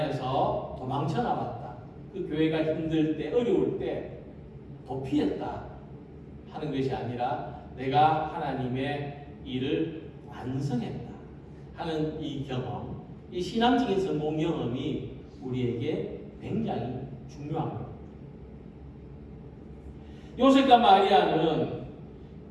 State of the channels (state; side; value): identical; both; correlation 1.00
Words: 도망쳐 나왔다. 그 교회가 힘들 때, 어려울 때 도피했다 하는 것이 아니라 내가 하나님의 일을 완성했다 하는 이 경험, 이 신앙적인 성공 경험이 우리에게 굉장히 중요한 겁니다. 요셉과 마리아는